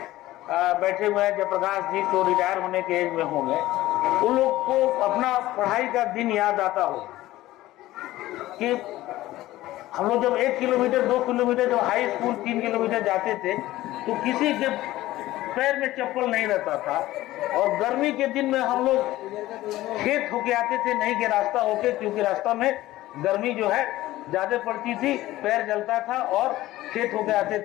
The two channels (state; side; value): quieter; right; 16.3 dB